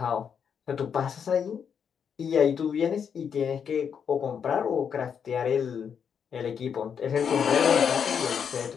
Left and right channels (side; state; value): right; quieter; 7.3 dB